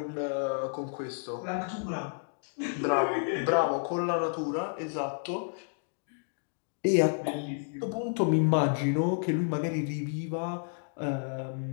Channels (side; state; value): right; silent; digital silence